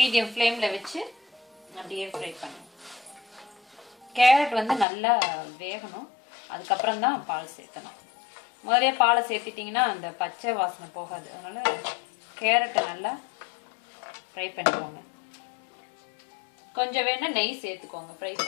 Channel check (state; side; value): drops out; right; at 4.9 s